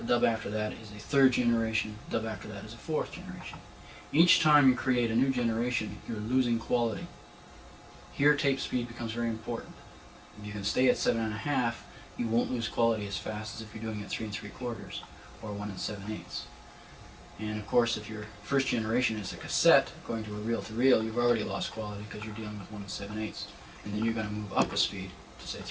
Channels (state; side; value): identical; both; correlation 1.00